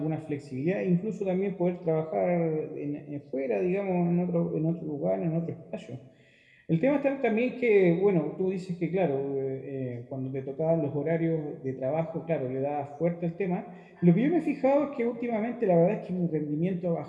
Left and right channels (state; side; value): identical; both; correlation 1.00